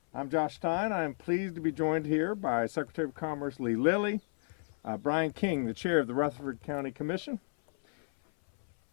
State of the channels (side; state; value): right; silent; 56 dB below the other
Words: I'm Josh Stein. I am pleased to be joined here by Secretary of Commerce Lee Lilly, Brian King, the Chair of the Rutherford County Commission.